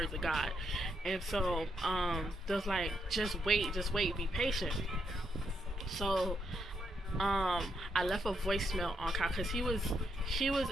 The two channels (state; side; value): normal; both; correlation 0.79